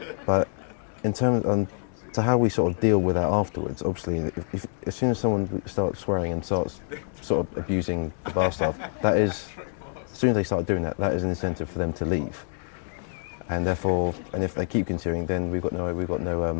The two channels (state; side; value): silent; right; 60 dB below the other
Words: But in terms to how we sort of deal with that afterwards, obviously, as soon as someone starts swearing and starts sort of abusing the bar staff, as soon as they start doing that is an incentive for them to leave. And therefore, if they keep continuing, then we've got